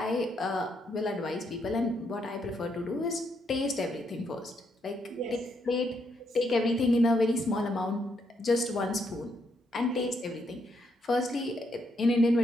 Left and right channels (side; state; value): both; normal; correlation 0.76